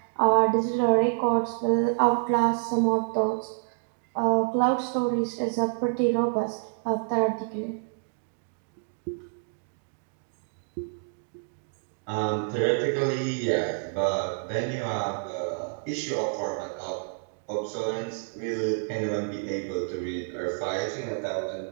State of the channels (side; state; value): left; silent; 59 dB below the other